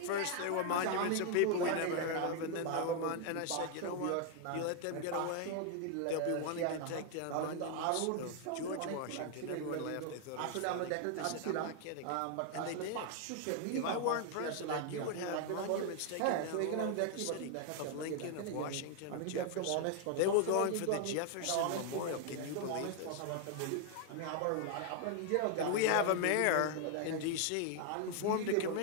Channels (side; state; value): both; different; correlation 0.00